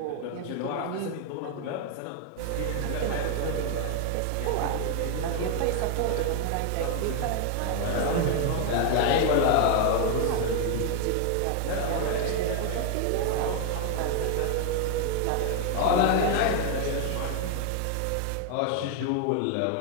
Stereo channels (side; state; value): both; different; correlation 0.00